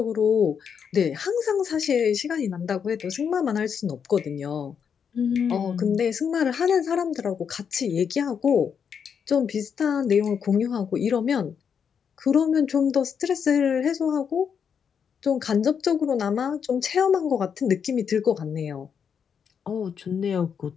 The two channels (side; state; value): right; quieter; 7.1 dB